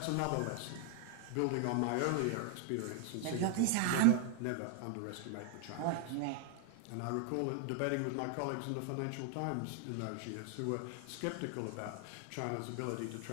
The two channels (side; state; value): both; different; correlation 0.00